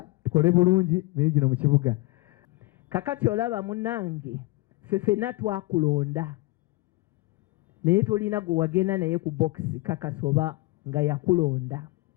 tukole bulungi mirimu gino mu kibuga. Kakati olaba munnange ffenna twakulonda naye tolina gwe wagenda naye ku bokisi kakasoba nga yakulonda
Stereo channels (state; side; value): quieter; right; 21.8 dB